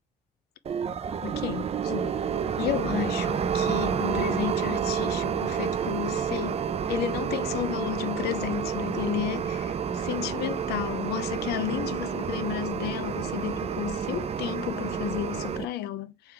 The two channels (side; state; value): both; normal; correlation 0.29